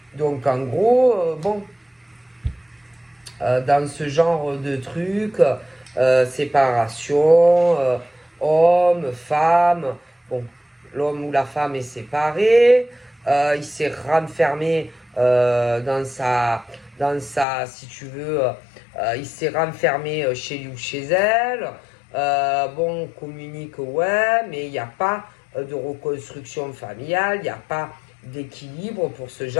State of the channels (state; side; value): drops out; right; at 17.4 s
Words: Donc en gros, dans ce genre de truc, séparation, homme, femme, bon, l'homme ou la femme est séparé, il s'est renfermé dans sa, si tu veux, il s'est renfermé chez lui ou chez elle. On communique, ouais, mais il n'y a pas de reconstruction familiale, il n'y a pas d'équilibre pour ce